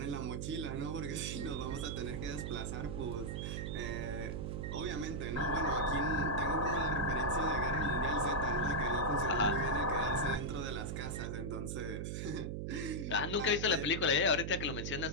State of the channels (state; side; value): noise; right; hum, 3 dB below the sound